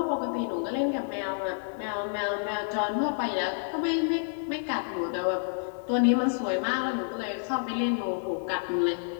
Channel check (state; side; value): silent; right; 59 dB below the other